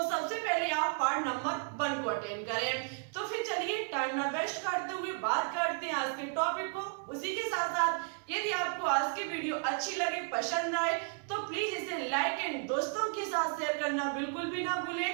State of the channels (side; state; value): left; quieter; 39.1 dB